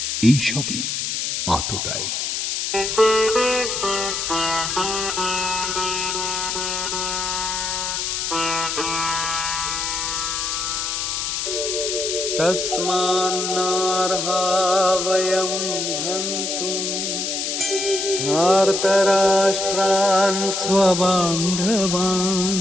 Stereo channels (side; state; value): left; noise; hiss, 2 dB below the sound